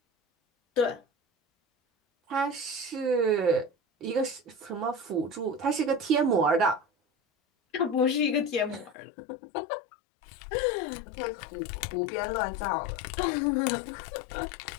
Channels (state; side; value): drops out; right; at 9.0 s